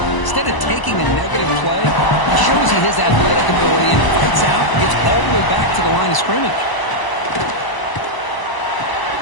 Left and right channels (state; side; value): late; right; 1.0 ms